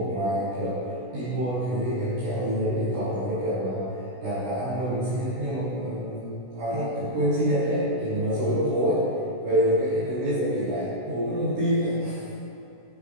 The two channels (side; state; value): left; late; 16 ms